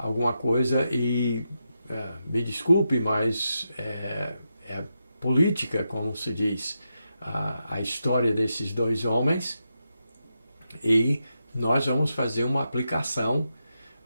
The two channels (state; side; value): inverted; both; correlation -0.87